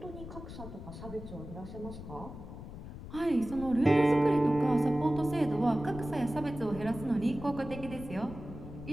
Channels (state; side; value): noise; left; rumble, 12 dB below the sound